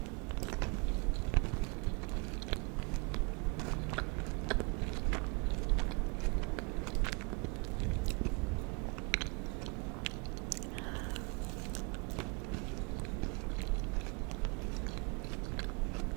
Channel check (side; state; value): left; quieter; 31.7 dB